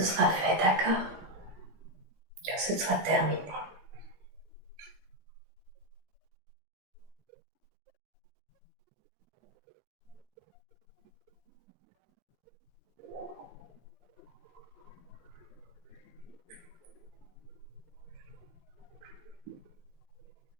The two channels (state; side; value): late; left; 17 ms